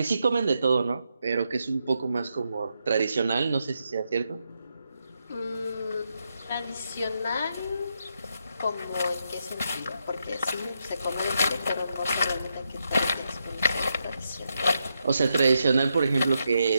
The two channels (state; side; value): inverted; both; correlation -0.83